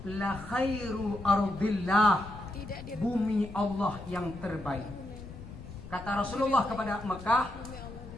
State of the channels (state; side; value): noise; left; rumble, 14 dB below the sound